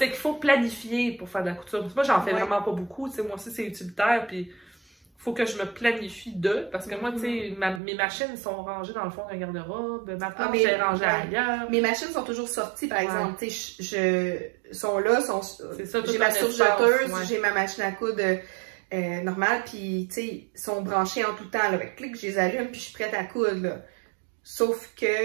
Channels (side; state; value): left; drops out; at 7.8 s